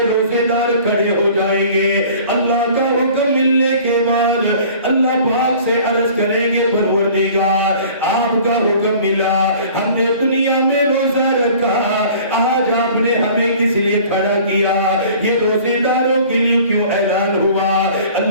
روزے دار کھڑے ہو جائیں گے، اللہ کا حکم ملنے کے بعد اللہ پاک سے عرض کریں گے پروردگار آپ کا حکم ملا، ہم نے دنیا میں روزہ رکھا، آج آپ نے ہمیں کس لیے کھڑا کیا، یہ روزے داروں کے لیے کیوں اعلان ہوا؟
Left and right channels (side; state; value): both; inverted; correlation -0.48